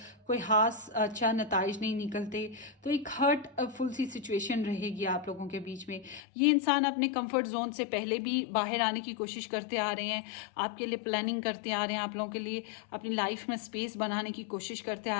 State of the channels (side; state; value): right; drops out; at 6.2 s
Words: कोई खास अच्छा नताइज नहीं निकलते, तो एक हर्टफुल सी सिचुएशन रहेगी आप लोगों के बीच में। ये इंसान अपने कंफर्ट जोन से पहले भी बाहर आने की कोशिश करते आ रहे हैं, आपके लिए प्लानिंग करते आ रहे हैं, आप लोगों के लिए अपनी लाइफ में स्पेस बनाने की कोशिश करते